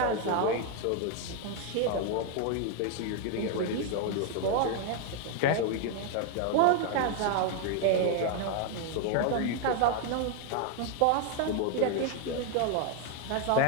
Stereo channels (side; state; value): both; different; correlation 0.01